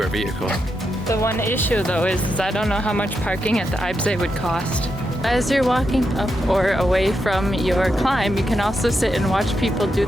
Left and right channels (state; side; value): normal; both; correlation 0.85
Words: our vehicle. The one issue though is I don't know how much parking at the Eibsee would cost. As you're walking up or away from your climb, you can also sit and watch people do